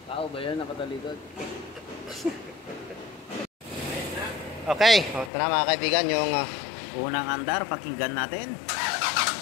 Tao ba yan nakatalikod? Okay, ito na mga kaibigan yung unang andar, pakinggan natin.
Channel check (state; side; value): drops out; right; at 5.3 s